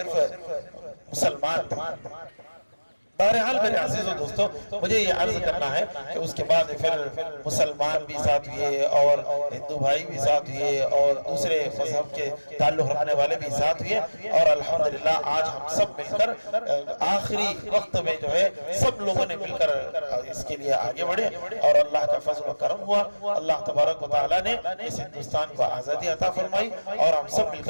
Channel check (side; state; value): both; inverted; correlation -1.00